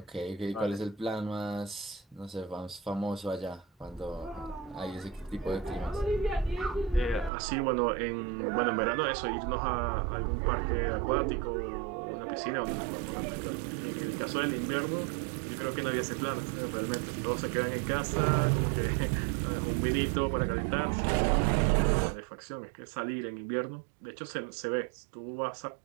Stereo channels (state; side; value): drops out; left; at 7.3 s